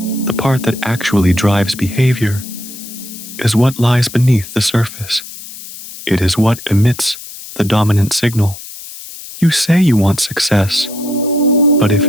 part that actually drives behavior, is what lies beneath the surface. It is what emits the dominant signal. You say you want success, but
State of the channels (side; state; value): left; noise; hiss, 14 dB below the sound